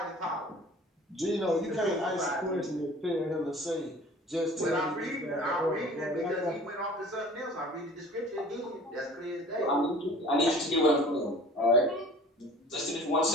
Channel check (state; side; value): normal; both; correlation 0.45